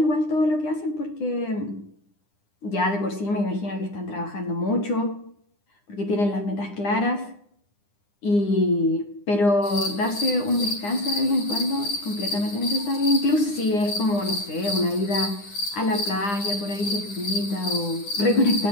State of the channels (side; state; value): right; late; 9.9 ms